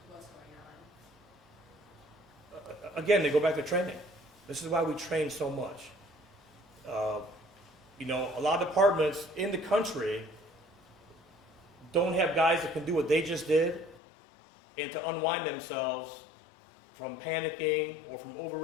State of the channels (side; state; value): right; drops out; at 14.0 s